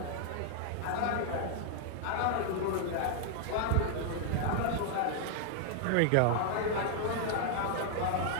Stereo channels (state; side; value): different; both; correlation -0.01